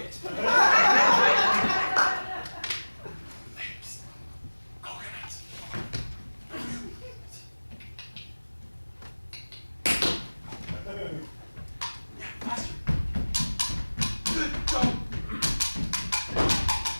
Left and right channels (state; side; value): inverted; both; correlation -1.00